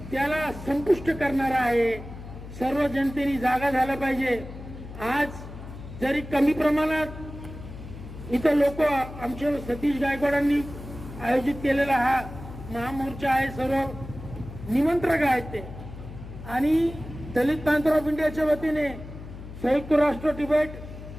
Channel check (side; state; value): left; noise; hum, 13 dB below the sound